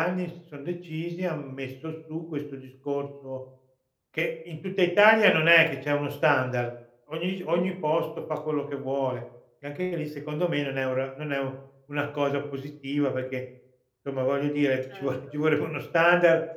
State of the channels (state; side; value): identical; both; correlation 1.00